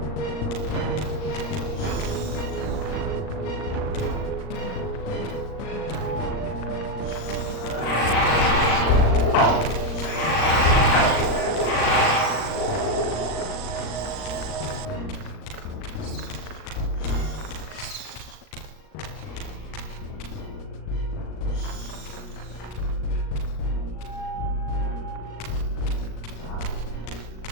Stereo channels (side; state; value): right; late; 38 ms